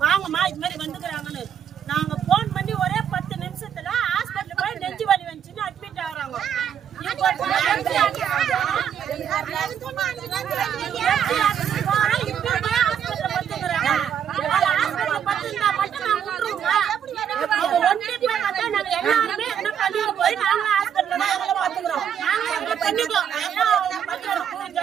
வாங்கம்மா இது மாதிரி வந்துக்கிறாங்கன்னு. நாங்க போன் பண்ணி ஒரே 10 நிமிஷத்துல ஹாஸ்பிட்டல் போய் நெஞ்சு வலி வந்துச்சுன்னு அட்மிட் ஆகுறாங்க.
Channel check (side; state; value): left; quieter; 8.7 dB